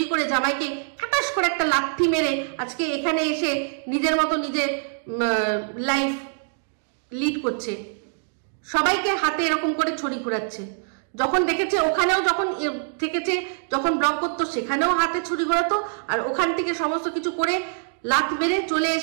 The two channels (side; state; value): left; silent; digital silence